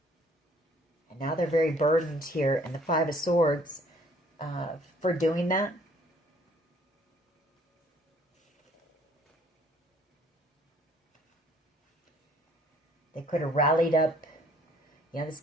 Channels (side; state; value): both; normal; correlation 0.59